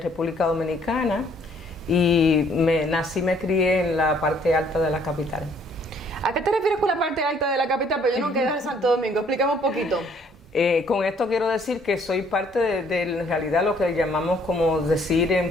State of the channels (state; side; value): normal; both; correlation 0.62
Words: Dominicana y me crié en la parte alta de la capital. ¿A qué te refieres con la parte alta de la capital? Pero yo no quedé en Santo Domingo, explícame un poquito. Con esto quiero decir que soy parte de en realidad lo que llamamos como decir en